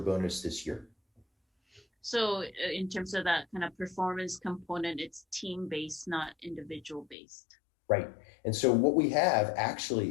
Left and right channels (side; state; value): right; drops out; at 7.2 s